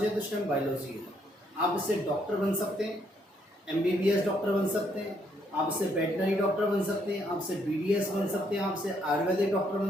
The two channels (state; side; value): normal; both; correlation 0.72